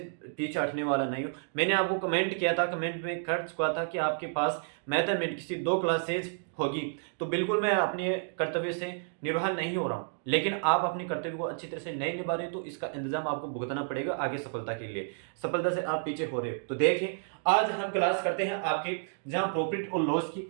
पीछे हटने वाला नहीं हूँ। मैंने आपको कमेंट किया था, कमेंट में कर चुका था कि आपके पास मैथमेटिक्स की 2 क्लासेज होगी, तो बिल्कुल मैं अपने कर्तव्य से निर्वाह नहीं हो रहा हूँ। लेकिन आप अपने कर्तव्य को अच्छी तरह से नहीं निभा रहे तो इसका इंतजाम आपको भुगतना पड़ेगा आगे सफलता के लिए। सफलता से आप पीछे हो रहे हो तो देखिए, आज हम क्लास करते हैं आपके जहां प्रॉफिट और लॉस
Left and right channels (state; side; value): silent; left; digital silence